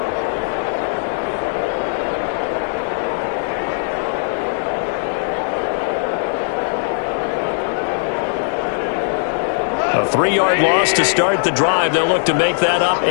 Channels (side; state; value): right; silent; digital silence